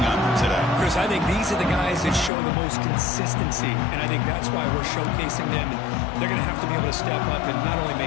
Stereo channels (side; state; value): right; drops out; at 2.3 s